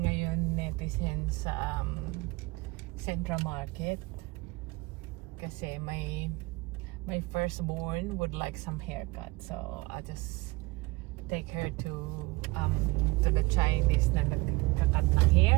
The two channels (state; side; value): quieter; left; 23.2 dB